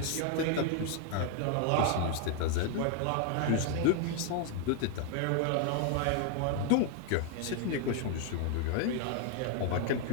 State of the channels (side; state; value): both; different; correlation 0.00